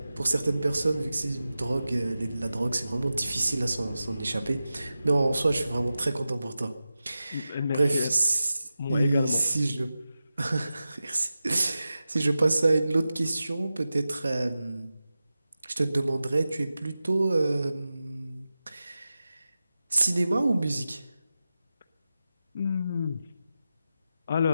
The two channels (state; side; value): inverted; both; correlation -0.93